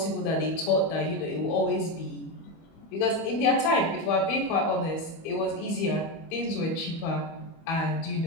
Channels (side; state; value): right; late; 25 ms